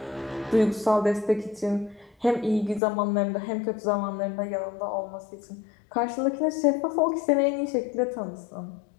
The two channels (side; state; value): right; drops out; at 2.8 s